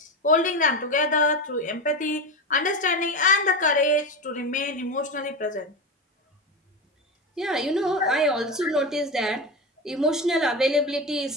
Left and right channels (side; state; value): both; normal; correlation 0.20